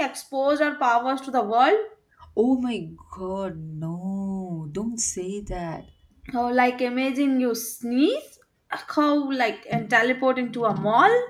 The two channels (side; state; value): both; identical; correlation 1.00